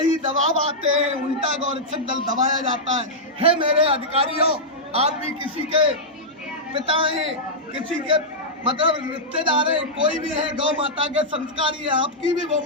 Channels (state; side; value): normal; both; correlation -0.09